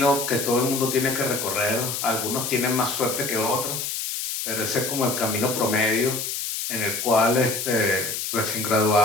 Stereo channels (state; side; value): noise; left; hiss, 3 dB below the sound